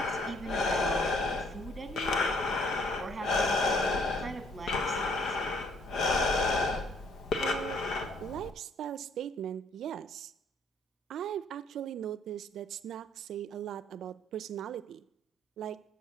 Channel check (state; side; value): normal; both; correlation 0.62